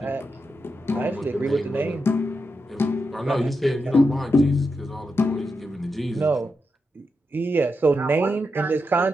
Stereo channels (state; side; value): normal; both; correlation 0.86